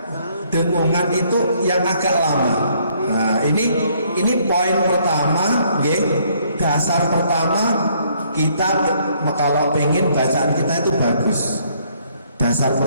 dengungan itu yang agak lama. Nah, ini poin pertama, dasar pertama kita kalau pengen bacaan kita itu bagus. Dasar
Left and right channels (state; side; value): inverted; both; correlation -0.66